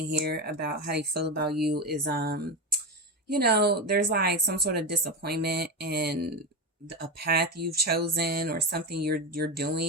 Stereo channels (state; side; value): normal; both; correlation 0.16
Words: here about how they feel about you is, you know, there's like some sort of disappointment in a path you've chosen or something you're